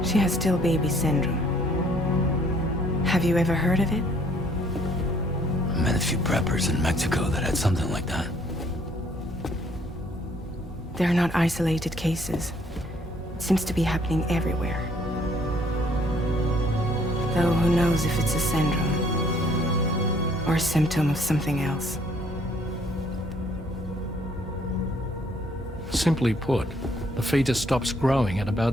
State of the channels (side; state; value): both; normal; correlation 0.63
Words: She has still baby syndrome. Have you ever heard of it? I met a few preppers in Mexico that had something like that. They're not isolated cases. It seems to be happening everywhere. Though who knows if it's a syndrome or a symptom of something else. Simply put, the fetus stops growing at